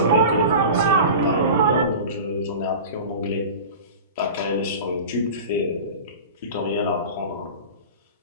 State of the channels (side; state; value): both; inverted; correlation -0.33